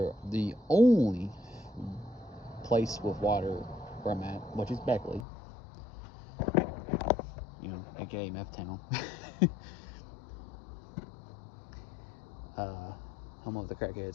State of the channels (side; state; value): right; drops out; at 5.2 s